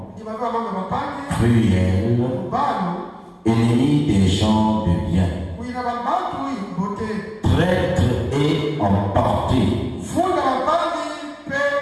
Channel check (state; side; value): identical; both; correlation 1.00